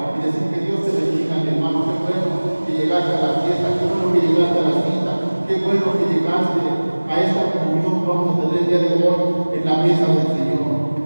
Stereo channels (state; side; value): inverted; both; correlation -1.00